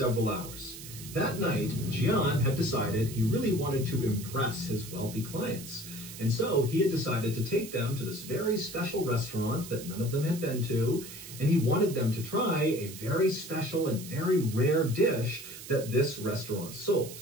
hours. That night, Jian had decided he really wanted to impress his wealthy clients. And so he had decided to take them to this very special restaurant that none of them had been to, and he wanted them to try a very special and very rare dish that this restaurant sold.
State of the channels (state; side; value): noise; right; hiss, 13 dB below the sound